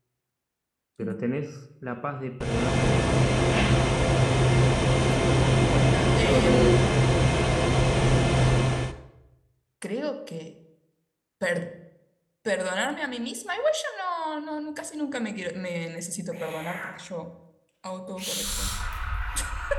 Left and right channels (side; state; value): both; identical; correlation 1.00